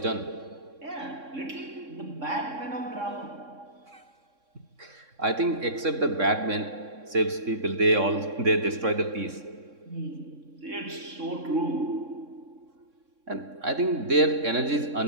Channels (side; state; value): left; late; 3.6 ms